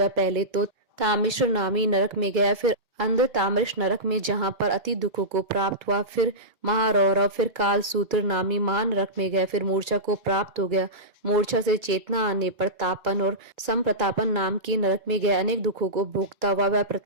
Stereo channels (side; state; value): left; late; 2.2 ms